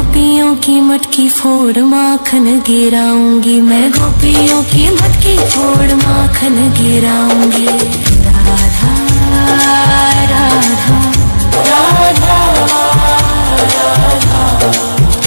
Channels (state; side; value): inverted; both; correlation -1.00